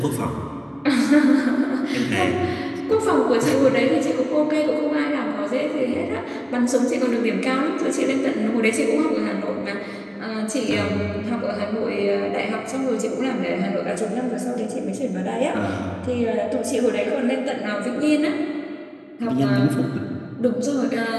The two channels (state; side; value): identical; both; correlation 1.00